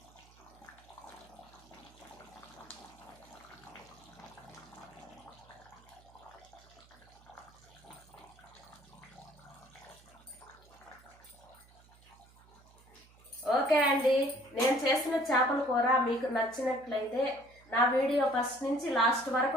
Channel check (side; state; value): right; noise; hum, 26 dB below the sound